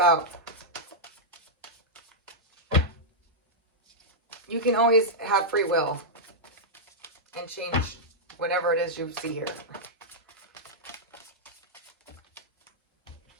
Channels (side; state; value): both; normal; correlation -0.07